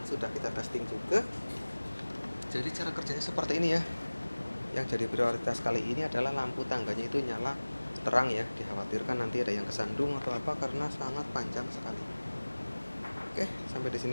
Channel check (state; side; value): inverted; both; correlation -1.00